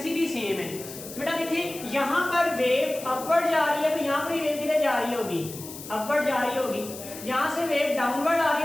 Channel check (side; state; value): left; noise; hiss, 13 dB below the sound